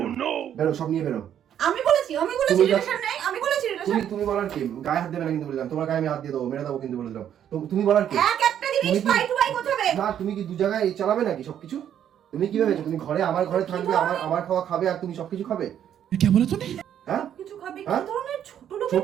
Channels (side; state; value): left; quieter; 9.9 dB